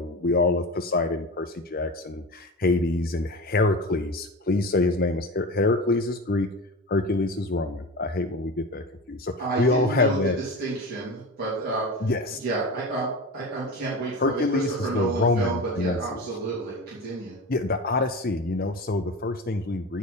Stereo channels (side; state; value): both; normal; correlation 0.28